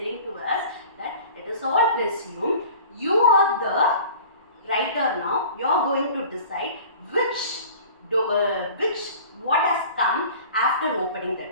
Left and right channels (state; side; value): inverted; both; correlation -0.44